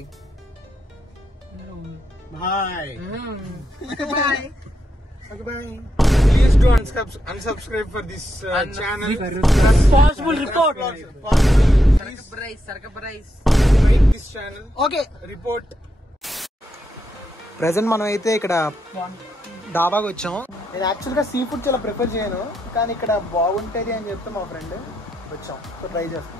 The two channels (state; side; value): normal; both; correlation 0.82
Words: bye bye. Okay, bye. Please do unsubscribe for this channel. Responsible report. Please like this channel. Okay. Report. Present మనం అయితే ఇక్కడ డాబాకి వచ్చాం. నేను యాక్చువల్గా సీ ఫుడ్ చాలా ప్రిఫర్ చేయను, కానీ ఇక్కడ బాగుంటుంది అని చెప్తే మా ఫ్రెండ్ వచ్చాం. సో ట్రై